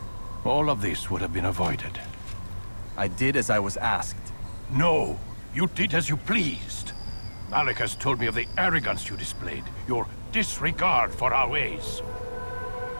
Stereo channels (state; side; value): inverted; both; correlation -1.00